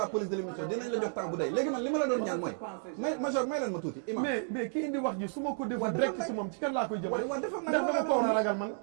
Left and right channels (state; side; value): silent; left; digital silence